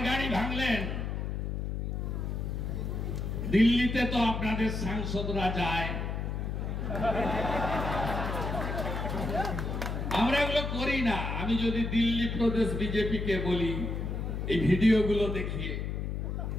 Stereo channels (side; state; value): left; noise; hum, 3 dB below the sound